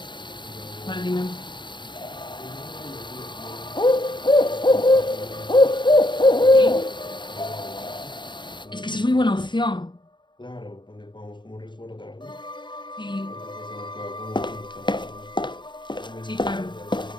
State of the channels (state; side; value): late; right; 0.22 ms